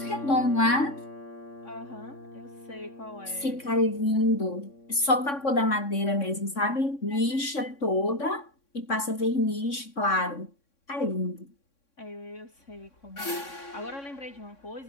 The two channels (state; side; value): late; right; 3.6 ms